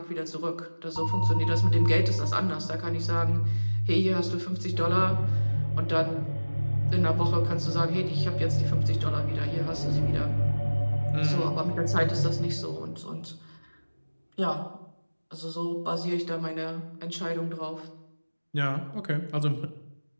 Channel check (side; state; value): both; inverted; correlation -1.00